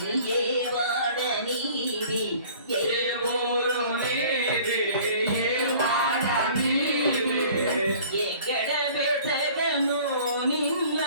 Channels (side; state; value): both; inverted; correlation -0.49